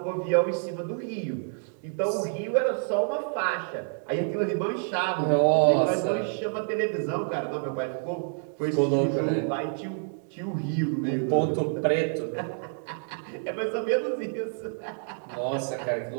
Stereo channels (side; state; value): left; silent; 59 dB below the other